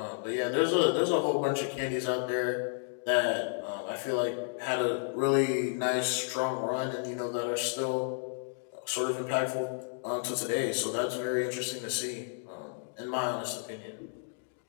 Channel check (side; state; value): right; silent; digital silence